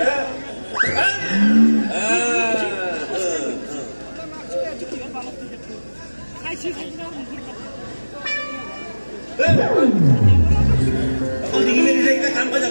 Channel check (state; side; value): inverted; both; correlation -1.00